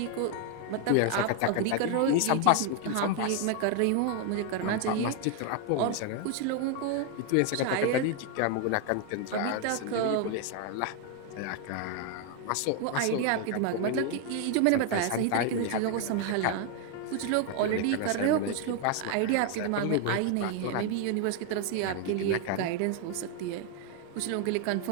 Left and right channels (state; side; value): different; both; correlation 0.01